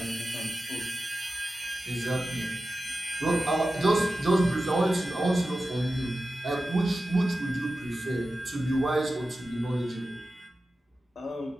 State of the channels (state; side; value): normal; both; correlation 0.93